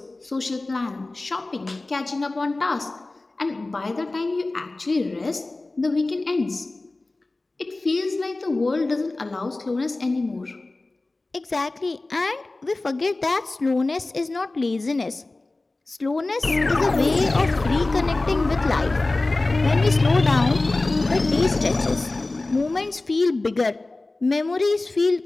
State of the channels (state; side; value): quieter; right; 3.1 dB